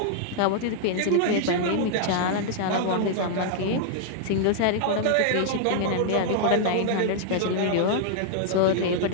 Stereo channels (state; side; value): different; both; correlation -0.01